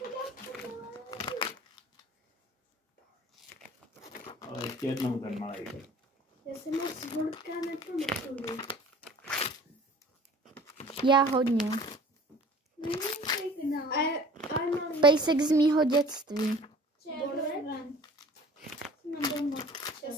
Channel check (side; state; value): both; normal; correlation 0.47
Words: Ale ještě jednou ten malej. Já jsem moc Borka nepamatuju. Já hodně. A mám Pejsek z mýho dětství. Já